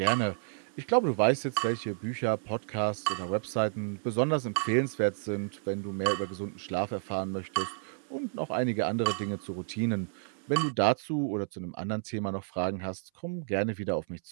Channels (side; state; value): left; silent; 57 dB below the other